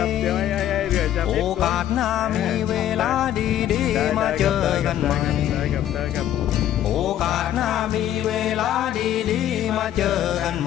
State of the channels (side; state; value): right; quieter; 11.6 dB